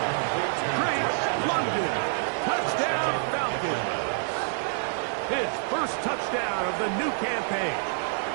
Great London. Touchdown, Falcons. His first touchdown of the new campaign.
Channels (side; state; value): left; silent; digital silence